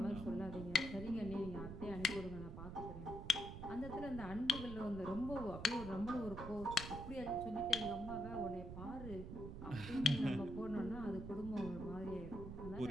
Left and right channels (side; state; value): right; noise; rumble, 8 dB below the sound